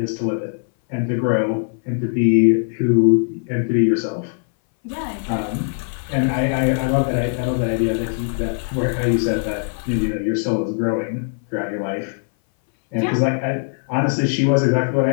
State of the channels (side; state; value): right; silent; 60 dB below the other